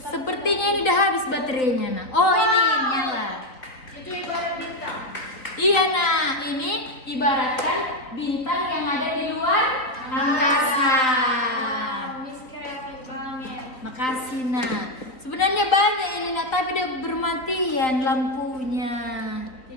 ini udah habis baterainya, nak. Oh, ini nyala. Itu ibarat bintang. Iya, nah, ini ibaratkan bintang yang ada di luar angkasa. Miss kreatif banget. Makasih, nak. Sebenarnya banyak ini, nak, tapi udah bermatian lampunya.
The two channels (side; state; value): right; late; 3.7 ms